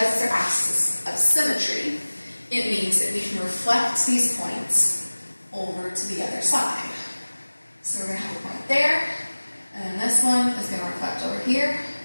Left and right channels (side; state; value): both; inverted; correlation -1.00